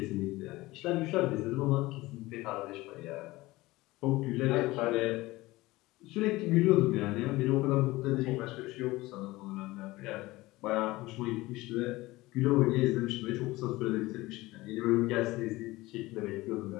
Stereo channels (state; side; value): quieter; right; 19.6 dB